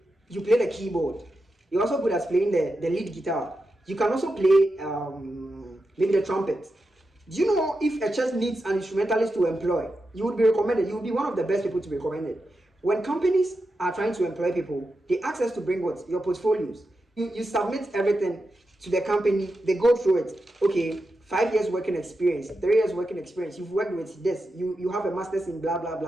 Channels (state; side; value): normal; both; correlation 0.89